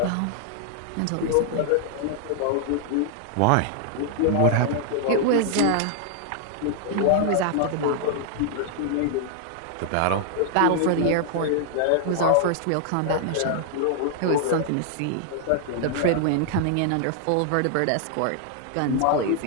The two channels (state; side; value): different; both; correlation 0.00